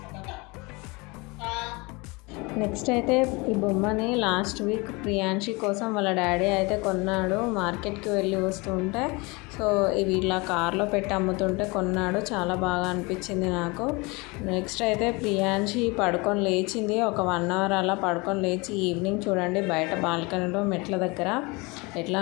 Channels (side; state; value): right; quieter; 26.3 dB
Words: నెక్స్ట్ అయితే ఈ బొమ్మని లాస్ట్ వీక్ ప్రియాంశి కోసం వాళ్ళ డాడీ అయితే కొన్నాడు. మార్కెట్కి వెళ్ళి వస్తుంటే సో ఇవి ఇలా కార్లో పెట్టి అమ్ముతుంటే కొన్నాడు. చాలా బాగా అనిపించింది నాకు. నెక్స్ట్ అయితే ప్రియాంశి పడుకొని లేచింది. ఒక 1 అవర్ అలా పడుకొని లేచి ఈవినింగ్ చూడండి బయట బాల్కనీలో మెట్ల దగ్గర ఎట్లా